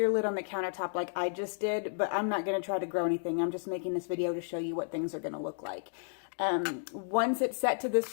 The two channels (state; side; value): silent; right; digital silence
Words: lid on the countertop like I just did, but I'm not going to try to grow anything. I'm just making this video to show you what things are going to look like. Once it's set to